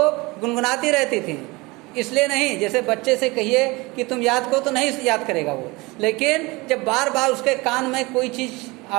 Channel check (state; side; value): quieter; left; 23.8 dB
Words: गुनगुनाती रहती थी। इसलिए नहीं, जैसे बच्चे से कहिए कि तुम याद करो तो नहीं याद करेगा वो, लेकिन जब बार बार उसके कान में कोई चीज़